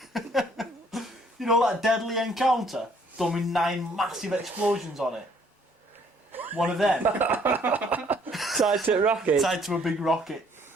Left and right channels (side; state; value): both; normal; correlation 0.63